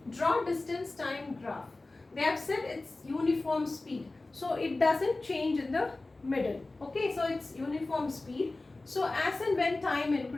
Draw distance time graph. They have said it's uniform speed, so it doesn't change in the middle. Okay, so it's uniform speed. So as and when time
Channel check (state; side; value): quieter; right; 3.1 dB